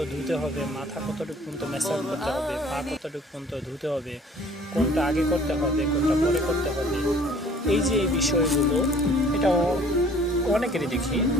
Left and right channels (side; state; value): both; normal; correlation 0.53